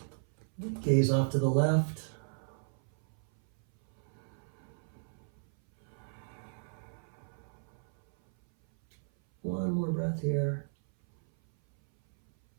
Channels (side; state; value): left; silent; 55 dB below the other